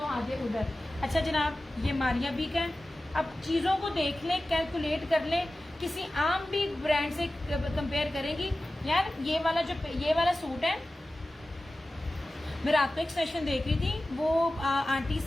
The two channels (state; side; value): normal; both; correlation 0.95